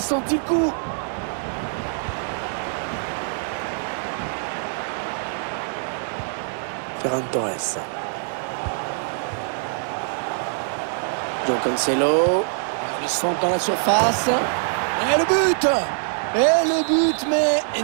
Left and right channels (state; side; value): silent; left; digital silence